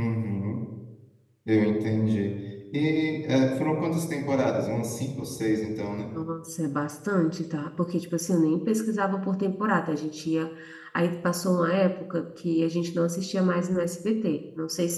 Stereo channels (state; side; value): identical; both; correlation 1.00